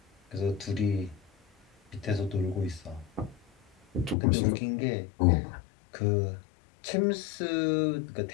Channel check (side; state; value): right; drops out; at 4.2 s